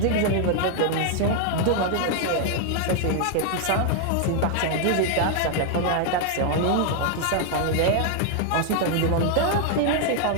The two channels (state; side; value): different; both; correlation 0.00